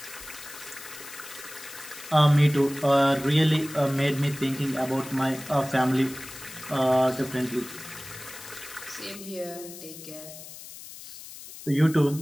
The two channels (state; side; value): noise; left; hiss, 14 dB below the sound